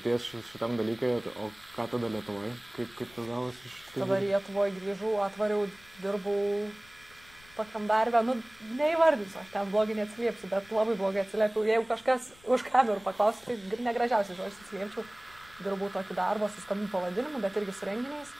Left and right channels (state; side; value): noise; left; rumble, 25 dB below the sound